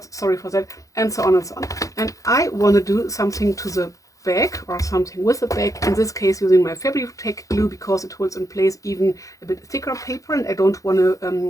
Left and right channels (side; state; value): right; late; 0.16 ms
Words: sorry for that, and so on and so on. And I want to do something to the back, or something with the back, in this case using my fabric tack glue, because it holds in place even a bit thicker paper, and I don't want